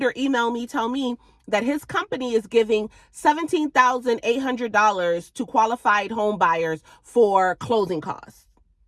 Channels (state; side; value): identical; both; correlation 1.00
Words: email me, tell me that his company is giving $17,800 to qualified home buyers for closing costs.